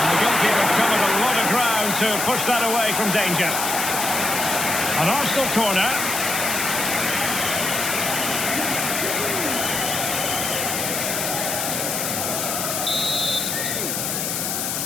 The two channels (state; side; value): noise; left; hiss, 1 dB below the sound